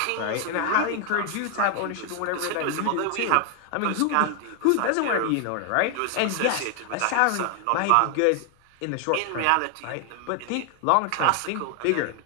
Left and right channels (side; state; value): both; different; correlation 0.00